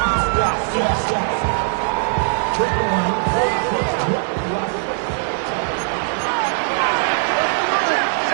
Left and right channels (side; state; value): left; silent; digital silence